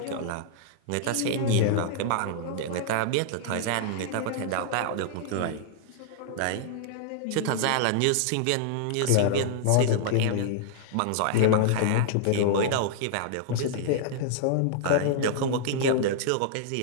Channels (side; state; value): both; different; correlation -0.01